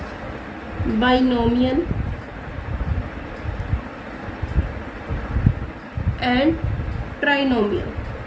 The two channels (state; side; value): identical; both; correlation 1.00